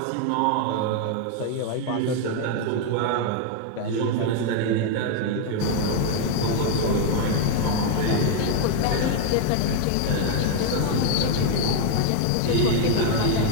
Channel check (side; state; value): both; different; correlation 0.00